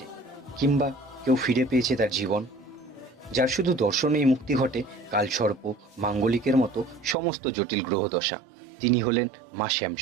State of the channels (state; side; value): drops out; left; at 7.2 s